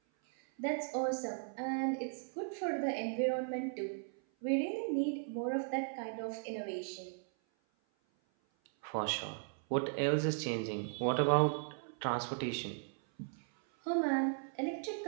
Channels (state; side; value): silent; left; 53 dB below the other